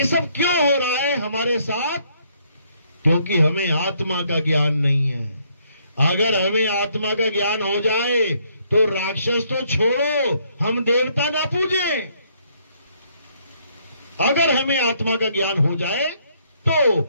सब क्यों हो रहा है हमारे साथ? क्योंकि हमें आत्मा का ज्ञान नहीं है। अगर हमें आत्मा का ज्ञान हो जाए तो राक्षस तो छोड़ो, हम देवता ना पूजें। अगर हमें आत्मा का ज्ञान हो जाए तो,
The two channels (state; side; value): inverted; both; correlation -0.69